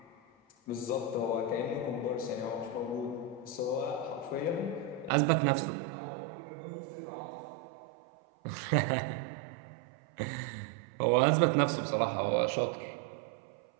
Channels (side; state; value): left; drops out; at 5.1 s